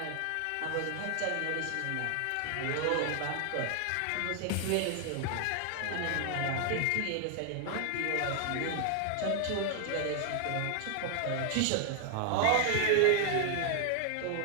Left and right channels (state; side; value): different; both; correlation 0.00